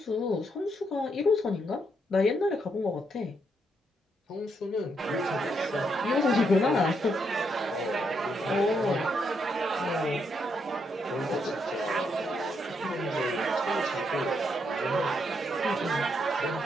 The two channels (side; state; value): both; normal; correlation 0.77